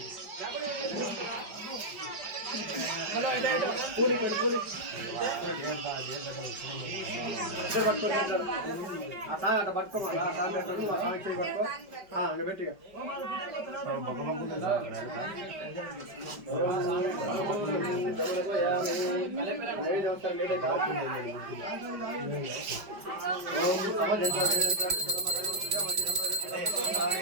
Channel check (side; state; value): left; late; 5.1 ms